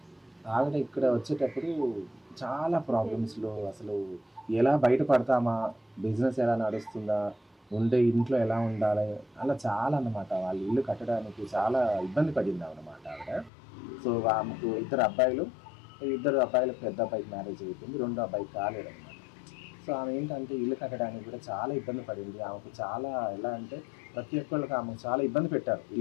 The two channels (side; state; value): right; drops out; at 13.5 s